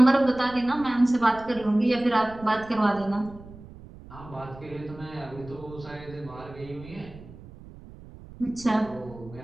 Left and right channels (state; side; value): noise; right; rumble, 18 dB below the sound